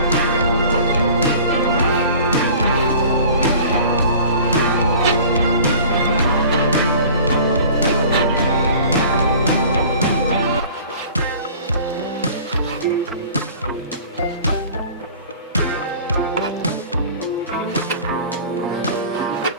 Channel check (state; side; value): inverted; both; correlation -0.45